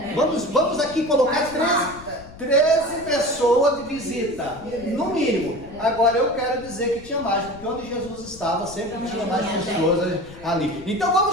Vamos aqui colocar 13 pessoas de visita, no mínimo. Agora eu quero dizer que tinha mais, porque onde Jesus estava sempre tinha mais pessoas ali. Então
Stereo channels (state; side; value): noise; left; rumble, 18 dB below the sound